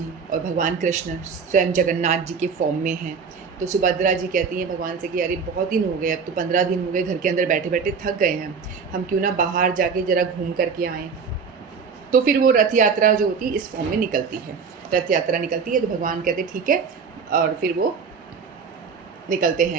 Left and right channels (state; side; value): quieter; left; 5.7 dB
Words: और भगवान कृष्ण स्वयं जगन्नाथ जी के फॉर्म में हैं। तो सुभद्रा जी कहती हैं भगवान से कि अरे बहुत दिन हो गए, अब तो 15 दिन हो गए घर के अंदर बैठे बैठे थक गए हैं, हम क्यों ना बाहर जाके ज़रा घूम करके आएँ। तो फिर वो रथ यात्रा जो होती है इस फॉर्म में निकलती है, रथ यात्रा निकलती है। तो भगवान कहते ठीक है, और फिर वो निकलते